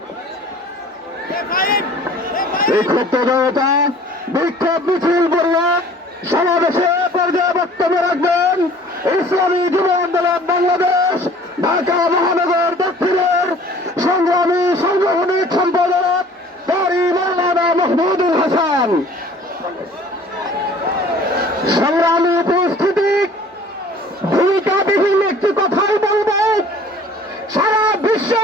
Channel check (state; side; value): normal; both; correlation 0.50